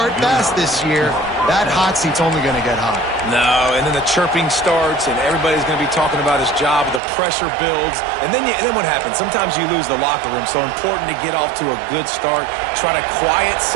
fast this year, that hot seat's only going to get hot. No, and then the chirping starts, and everybody's going to be talking about his job. The pressure builds, and then what happens? Sometimes you lose the locker room, so important to get off to a good start. Try to quiet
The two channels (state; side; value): drops out; left; at 7.0 s